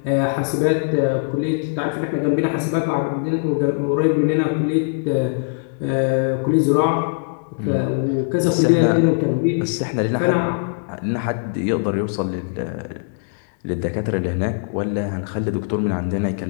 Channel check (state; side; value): silent; right; digital silence